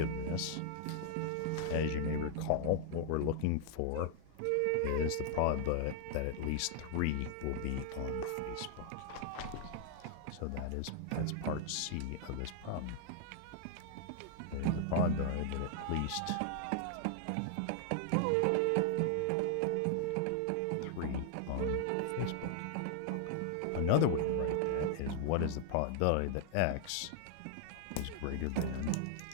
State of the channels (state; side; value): different; both; correlation 0.00